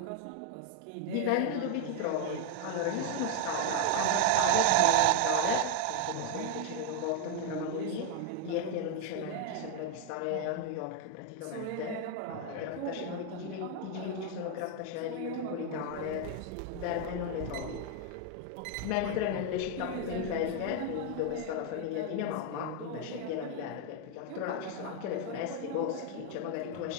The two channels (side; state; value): both; different; correlation 0.01